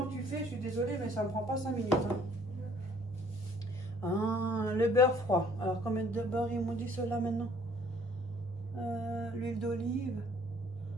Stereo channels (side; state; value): both; normal; correlation 0.58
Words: que tu fais, je suis désolée, mais ça ne me prend pas 5 minutes. Hein. Ah, le beurre froid. Alors, combien de beurre ils m'ont dit cela maintenant? L'huile d'olive,